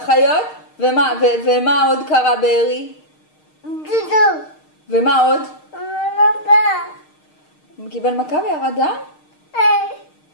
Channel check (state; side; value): late; right; 6.5 ms